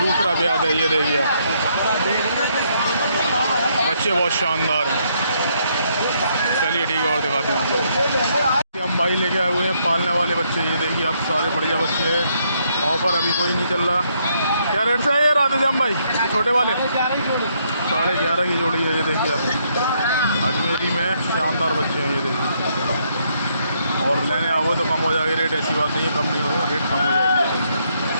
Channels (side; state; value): both; inverted; correlation -0.73